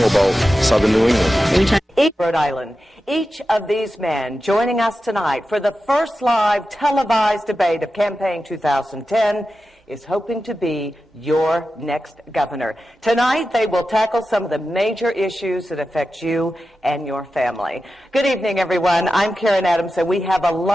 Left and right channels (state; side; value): normal; both; correlation 0.92